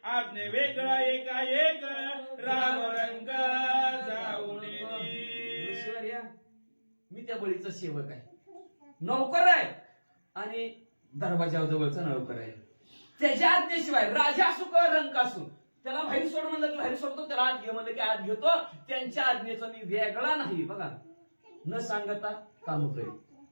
आपने वेगळा एकाएक राम रंग जाऊन. ऋषीवर्या मी त्या बळीचा सेवक आहे, नौकर आहे आणि दरवाजाजवळचा नौकर आहे. त्याच्या आज्ञेशिवाय राजा असू का रंक असू त्याला बाहेर सोड म्हणलं की बाहेर सोडतो, त्याला आत घे म्हणलं की आत घेतो. त्यांच्या आज्ञेचा मी वेगळा नाही. बघा, न सांगता काम करेल.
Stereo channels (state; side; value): inverted; both; correlation -1.00